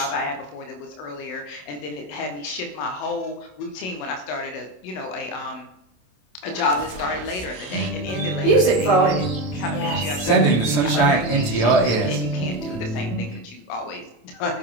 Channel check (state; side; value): late; right; 27 ms